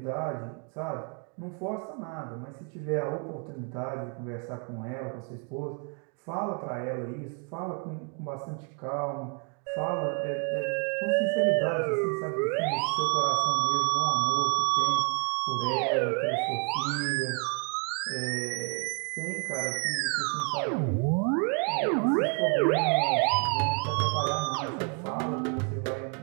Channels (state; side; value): quieter; left; 39.0 dB